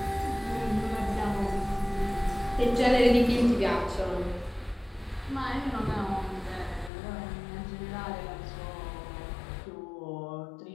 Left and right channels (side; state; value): right; drops out; at 6.9 s